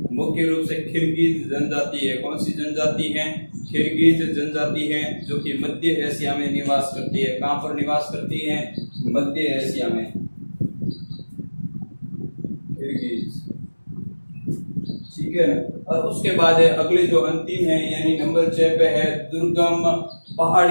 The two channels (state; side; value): inverted; both; correlation -1.00